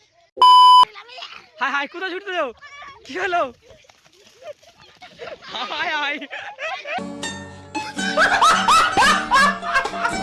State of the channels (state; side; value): identical; both; correlation 1.00